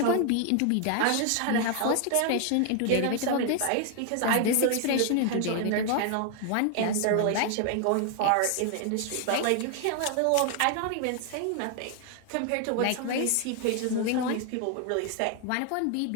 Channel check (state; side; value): different; both; correlation 0.00